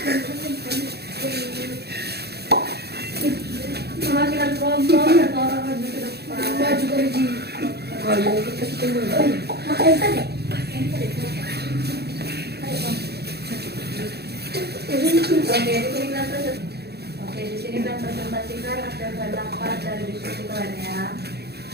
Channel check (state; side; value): late; left; 0.47 ms